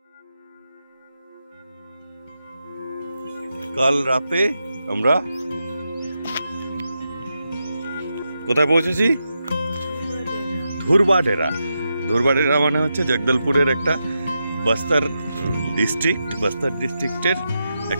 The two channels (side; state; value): both; inverted; correlation -0.87